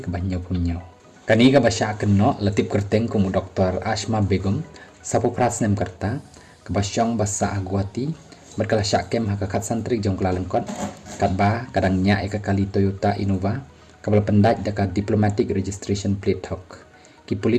kabanyo punyo kani ka basya kenok latip kerteng kumu doktor Asma Begum sapu prasnem karta kabasyong basa agwati berkala syakem hakakat santrik jong kala lengkot katba kadang nya eka kali Toyota Innova kabel pendaj daka diplomatic registration plate thok ki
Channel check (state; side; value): identical; both; correlation 1.00